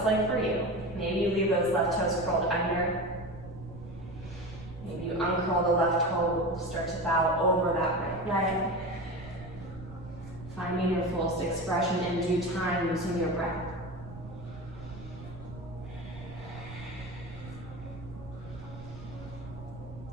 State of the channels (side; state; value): right; noise; rumble, 14 dB below the sound